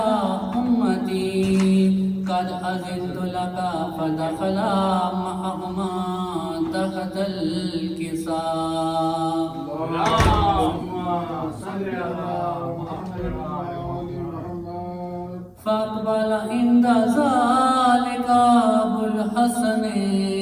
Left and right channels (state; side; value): identical; both; correlation 1.00